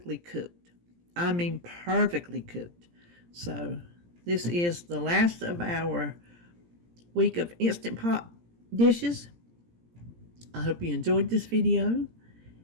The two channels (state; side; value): late; left; 17 ms